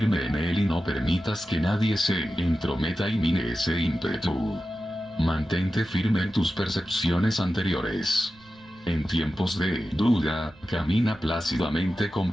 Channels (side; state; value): right; noise; rumble, 26 dB below the sound